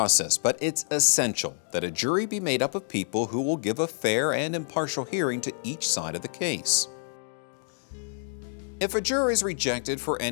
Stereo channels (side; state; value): right; silent; digital silence